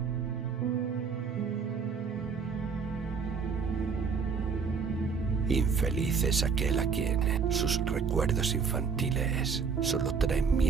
Infeliz es aquel a quien sus recuerdos infantiles solo traen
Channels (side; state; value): left; quieter; 5.8 dB